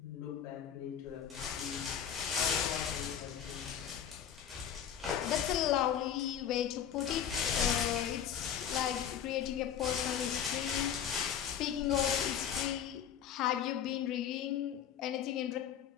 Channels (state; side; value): quieter; right; 9.0 dB